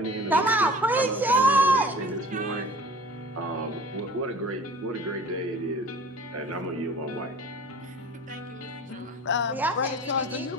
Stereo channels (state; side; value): normal; both; correlation 0.44